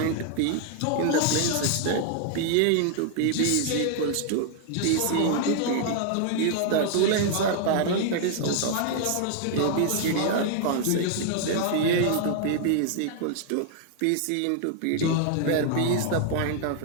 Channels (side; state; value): both; different; correlation 0.00